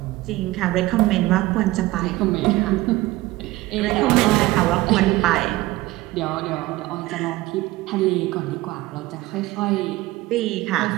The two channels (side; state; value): left; quieter; 18.2 dB